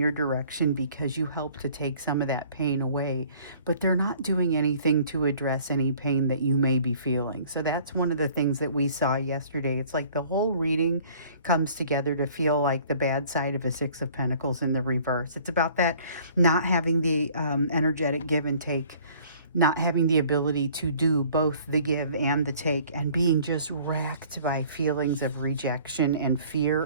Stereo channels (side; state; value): both; inverted; correlation -0.54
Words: direction because you help to take some of that pain away, but they're not doing anything to address any pain that you may be feeling. So that's one of the things that we saw yesterday. It's like the whole reading comes together to feel like the bad side of a Six of Pentacles in the reverse. It's about that not having the energetic give and take, not having the ability to do both the give and the take, and being just racked by feelings of rejection and